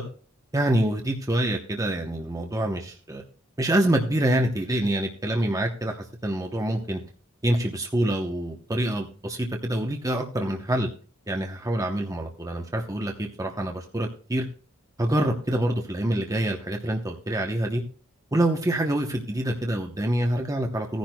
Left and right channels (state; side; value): normal; both; correlation 0.79